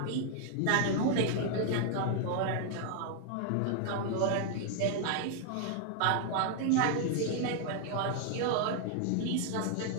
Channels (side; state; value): both; different; correlation 0.00